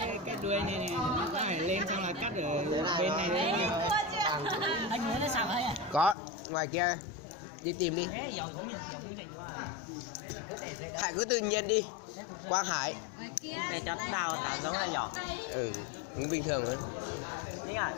cái đuôi này nó phải lên xong là cắt ở bên này. Anh muốn nó sao ấy à? Có, ngoài kia đi tìm đi. Hải cứ tự nhiên đi. Quang Hải. Để cho đào thả giống này nhỏ. Ừ, cũng bình thường thôi. Đấy à,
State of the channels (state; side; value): drops out; right; at 6.2 s